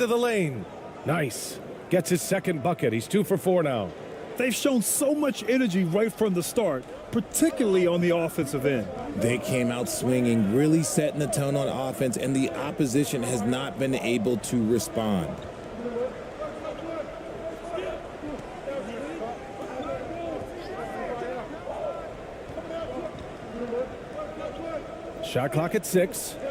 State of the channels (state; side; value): identical; both; correlation 1.00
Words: the lane. Nice. Gets his second bucket. He's 2 for 4 now. They've shown so much energy right from the start, particularly on the offensive end. They came out swinging, really setting the tone on offense, and the opposition has not been able to respond. Shot clock at 6.